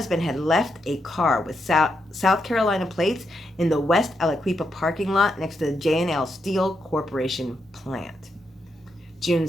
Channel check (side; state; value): both; normal; correlation 0.82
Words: had left a car with South Carolina plates in the West Aliquippa parking lot next to the J&L Steel Corporation plant. June